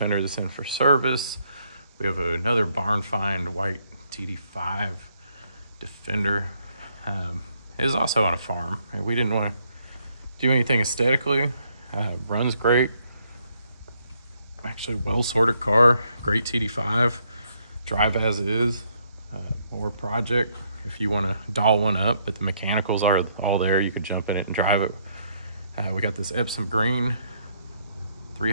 that's in for service. We have another barn find white TD5 Defender. It is also on a farm. We didn't want to do anything aesthetically. Runs great. Actually, well-sorted car. Great TD5. Drive as it is. Or project if you want to doll one up, but the mechanicals are all there. You could jump in it and drive it. We got this Epsom Green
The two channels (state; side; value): inverted; both; correlation -0.72